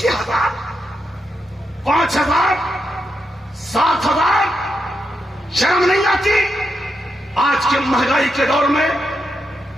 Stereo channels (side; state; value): both; normal; correlation 0.85